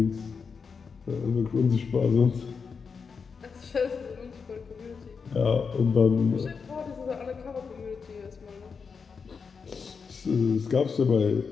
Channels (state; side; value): quieter; right; 5.5 dB